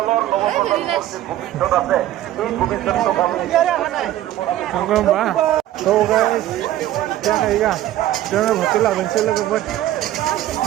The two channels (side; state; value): left; quieter; 13.7 dB